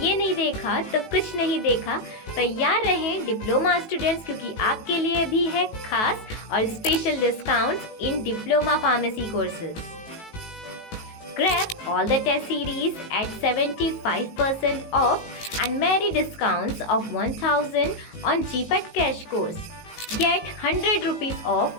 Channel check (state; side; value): late; right; 18 ms